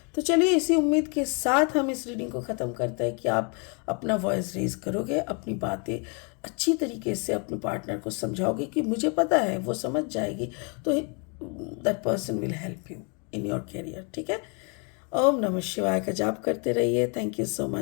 तो चलिए इसी उम्मीद के साथ हम इस रीडिंग को ख़त्म करते हैं कि आप अपना वॉइस रेज करोगे, अपनी बातें अच्छी तरीके से अपने पार्टनर को समझाओगे कि मुझे पता है वो समझ जाएगी, तो that person will help you in your career, ठीक है। ओम नमः शिवाय का जाप करते रहिए। Thank you so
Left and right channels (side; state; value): right; quieter; 35.3 dB